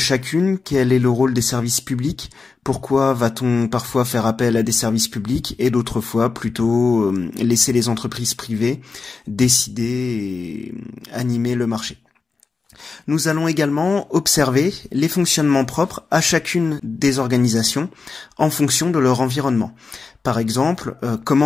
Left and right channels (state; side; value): quieter; right; 4.5 dB